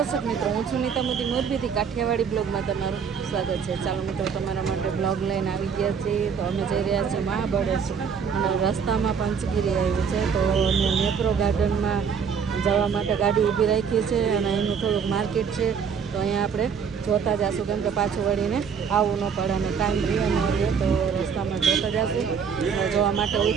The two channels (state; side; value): quieter; left; 6.6 dB